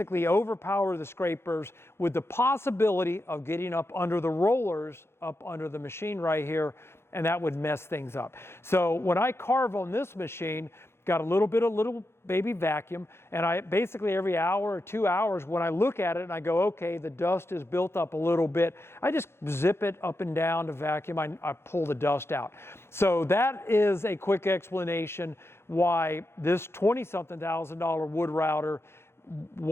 overpower the scrapers with the possibility of getting up under the rollers, up under the machine right here, and that would mess things up. So when I carve on this machine, got a little baby vacuum, and I basically every hour or 2 hours when I look at it and I go, okay, the dust is built up a little bit, I just zip it up and down to vacuum. I pull the dust out. So that is a quick explanation why this $20-something thousand wood router,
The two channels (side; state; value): right; late; 0.12 ms